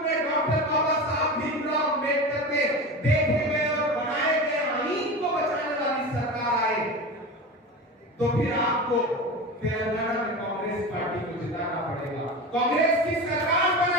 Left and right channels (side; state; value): both; normal; correlation 0.27